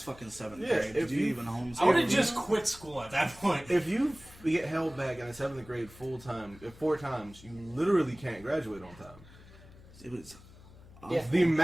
fucking 7th Yeah, grade." if Did you you- even homeschool? I would have just quit school at that point. if you get held back in the 7th grade full time, 4 times, you literally can't graduate on time. It was. Yeah. The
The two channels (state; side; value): noise; left; hum, 21 dB below the sound